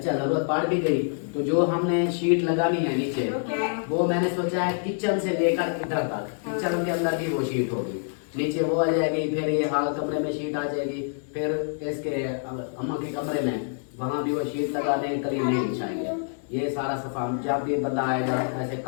जरूरत पड़ भी गई तो जो हमने शीट लगानी है नीचे वो मैंने सोचा है किचन से लेकर इधर तक, किचन के अंदर भी वो शीट होगी, नीचे वो आ जाएगी, फिर ये हाल कमरे में शीट आ जाएगी, फिर इसके अम्मा के कमरे में वहाँ भी वो शीट लगा देंगे, करीब नहीं बिछाएंगे। ये सारा सफा जब भी बंदा आएगा ऐसे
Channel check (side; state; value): right; silent; 61 dB below the other